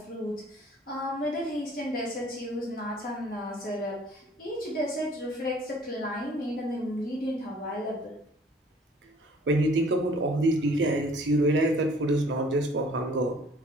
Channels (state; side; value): normal; both; correlation 0.55